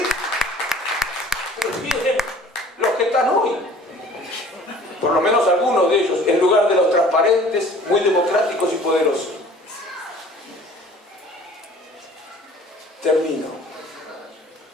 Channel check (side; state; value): both; normal; correlation 0.49